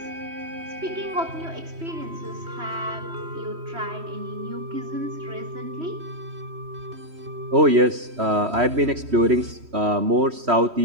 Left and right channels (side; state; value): left; late; 3.1 ms